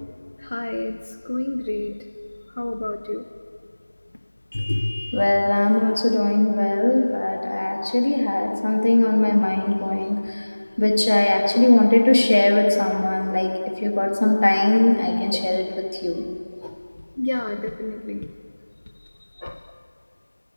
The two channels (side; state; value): both; inverted; correlation -1.00